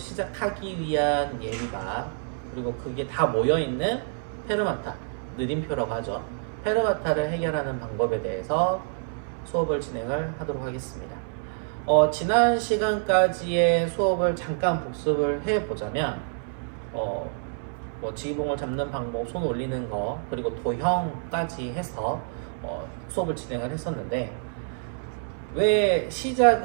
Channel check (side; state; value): left; silent; 59 dB below the other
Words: 위한 예비가, 그리고 그게 다 모여있는 페르마타, 느림표라고 하죠. 페르마타를 해결하는 방법에 대해서 수업을 진행을 하도록 하겠습니다. 지난 시간까지의 수업을 잠깐 복습을 해보자면 지휘봉을 잡는 방법, 손 올리는 거, 그리고 도형까지 해서 수업을 진행을 했었는데, 왜